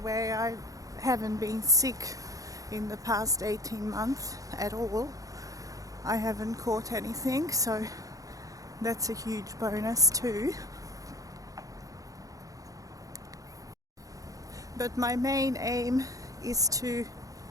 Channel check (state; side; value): late; left; 0.17 ms